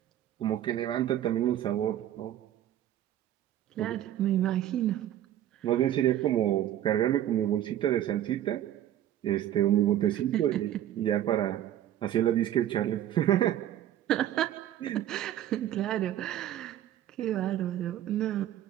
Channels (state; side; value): quieter; left; 12.0 dB